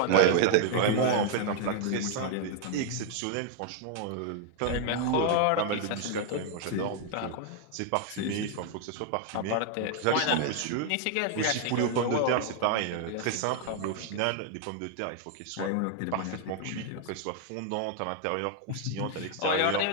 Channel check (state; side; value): different; both; correlation 0.00